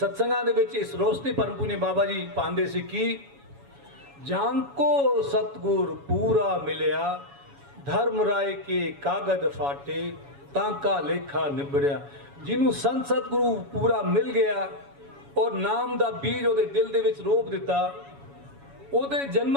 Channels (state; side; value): late; left; 7.1 ms